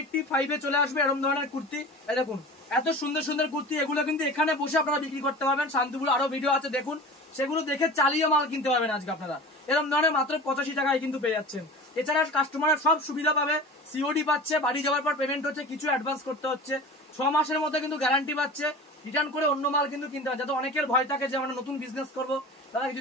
চলে আসবে এরকম ধরনের কুর্তি। দেখুন এত সুন্দর সুন্দর কুর্তি, এগুলো কিন্তু এখানে বসে আপনারা বিক্রি করতে পারবেন। শান্তিপুর আরো ভিডিও আছে দেখুন, সেগুলো দেখে চালিয়ে মাল কিনতে পারবেন আজকে আপনারা। এরকম ধরনের মাত্র 85 টাকায় কিন্তু পেয়ে যাচ্ছেন। এছাড়া কাস্টমার সব সুবিধা পাবে, সিওডি পাচ্ছে, বাড়ি যাওয়ার পর পেমেন্ট হচ্ছে, কিছু অ্যাডভান্স করতে হচ্ছে, 6 মাসের মধ্যে কিন্তু গ্যারান্টি পাচ্ছে। রিটার্ন করে অন্য মাল কিন্তু কিনতে হবে, যাতে অনেকের ভয় থাকে যে আমরা নতুন বিজনেস করবো, তারা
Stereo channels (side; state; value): both; normal; correlation 0.36